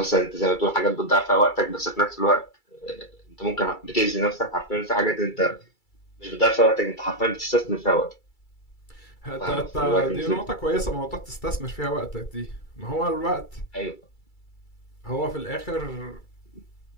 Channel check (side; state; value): right; late; 2.3 ms